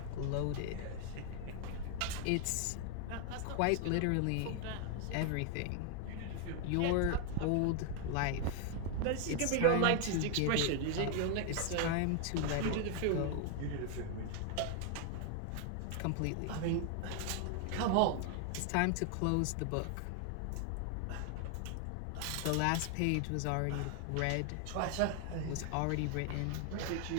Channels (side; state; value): both; different; correlation 0.00